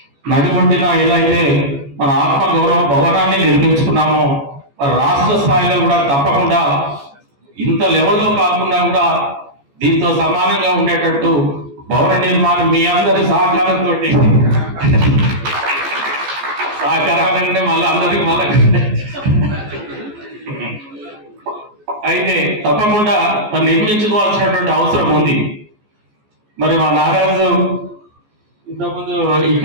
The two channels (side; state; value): left; late; 14 ms